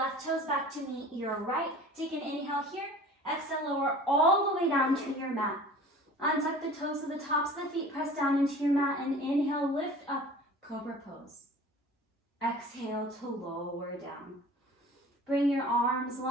toes back to meet your right. Take an inhale here. Exhale, lower all the way down to your mat. Untuck the toes so the tops of the feet press down into your mat, and inhale, lift up, cobra pose. Exhale to lower down. Bring your arms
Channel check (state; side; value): normal; both; correlation 0.43